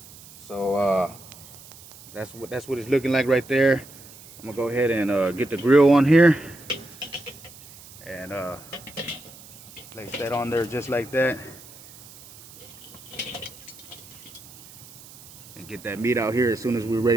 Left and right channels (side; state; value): right; noise; hiss, 20 dB below the sound